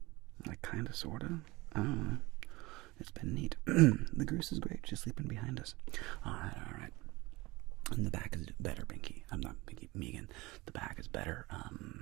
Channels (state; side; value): quieter; left; 21.8 dB